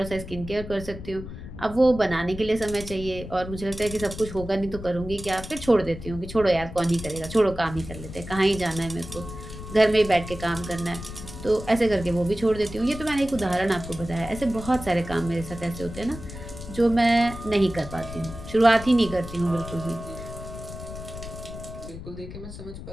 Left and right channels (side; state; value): left; noise; rumble, 11 dB below the sound